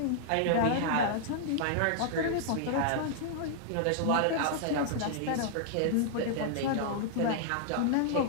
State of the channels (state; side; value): different; both; correlation -0.01